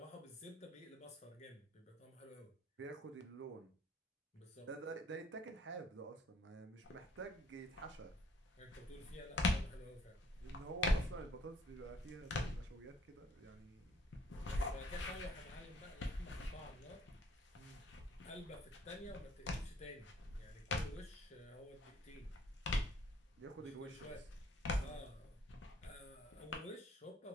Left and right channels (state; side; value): normal; both; correlation 0.60